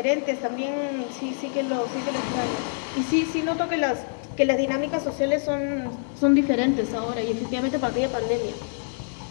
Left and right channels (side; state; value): right; silent; digital silence